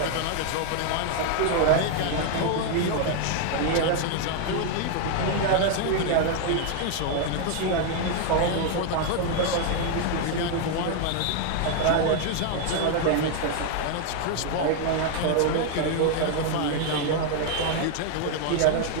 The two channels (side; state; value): both; different; correlation 0.00